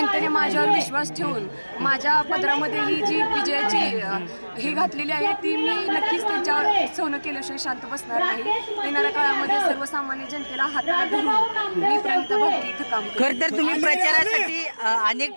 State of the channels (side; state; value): both; inverted; correlation -1.00